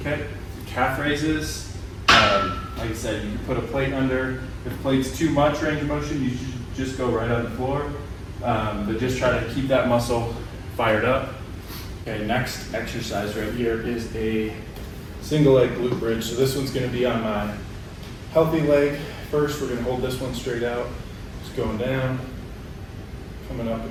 Okay, calf raises. Like I said, you can put a plate under. If the plate's too much range of motion, you should just go right on the floor. But just try to keep that muscle fired up. Okay, next exercise right here is a single leg glute bridge. So this one's gonna be on my healthy leg. First, we're gonna hold this one straight out. Just going down, coming up and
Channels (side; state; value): both; identical; correlation 1.00